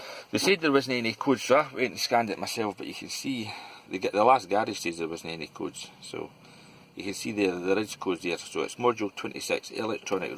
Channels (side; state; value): both; identical; correlation 1.00